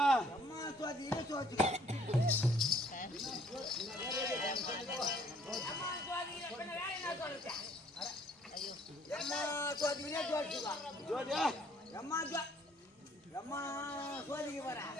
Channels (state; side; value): normal; both; correlation 0.60